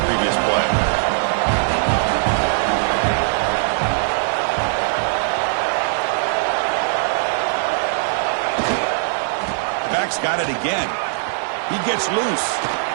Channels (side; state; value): left; silent; digital silence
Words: previous play. Got it again. He gets loose.